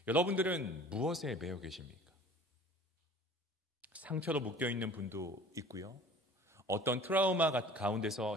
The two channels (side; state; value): both; normal; correlation 0.46